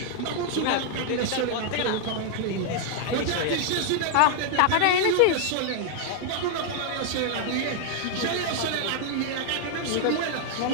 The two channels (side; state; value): both; different; correlation 0.00